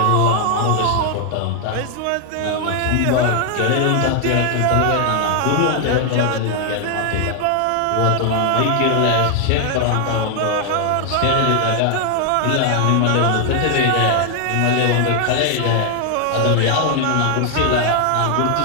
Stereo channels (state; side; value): different; both; correlation 0.00